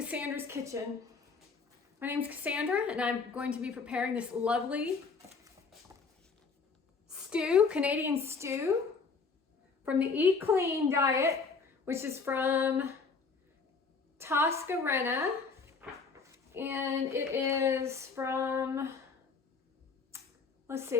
Kitchen. My name is Cassandra and I'm going to be preparing this lovely stew, Canadian stew from the Eat Clean diet, which is from Toscarena, and it is from, let's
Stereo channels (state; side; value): quieter; right; 4.8 dB